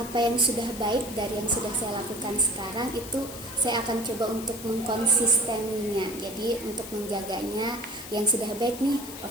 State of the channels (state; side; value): noise; left; hiss, 12 dB below the sound